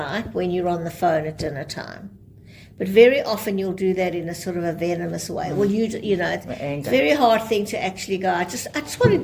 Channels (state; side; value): identical; both; correlation 1.00